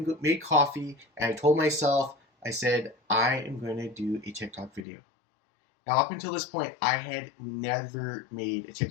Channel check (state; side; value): drops out; right; at 4.8 s